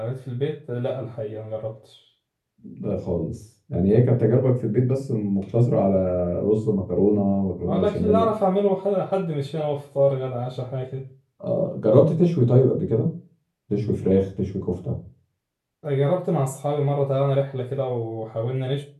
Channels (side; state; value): both; identical; correlation 1.00